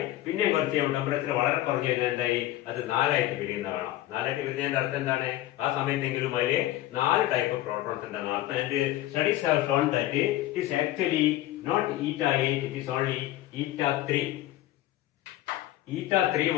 പിന്നെയും കുറച്ച് കഴിയുമ്പോൾ ടെമ്പറേച്ചർ വളരെ കുറഞ്ഞു കഴിഞ്ഞാൽ എന്തായി അത് 4ആയിട്ട് പിരിയുന്ന കാണാം. 4ആയിട്ട് പിരിഞ്ഞതിന്റെ അർത്ഥം എന്താണ്? ആ സമയത്തെങ്കിലും അതിൽ 4 ടൈപ്പ് ഓഫ് പ്രോട്ടോൺസ് ഉണ്ടെന്ന് അർത്ഥം. And studies have shown that it is actually not eta 8, it is only eta 3. eta 3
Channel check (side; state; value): right; quieter; 15.1 dB